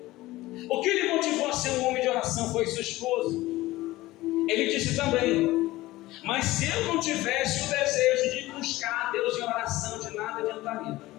o que lhe motivou a ser um homem de oração? Foi sua esposa? Ele disse também, mas se eu não tivesse o desejo de buscar a Deus em oração, de nada adiantaria.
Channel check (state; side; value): quieter; right; 18.0 dB